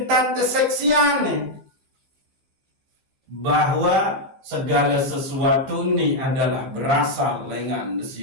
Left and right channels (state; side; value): late; left; 15 ms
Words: keseksian bahwa segala sesuatu ini adalah berasal dengan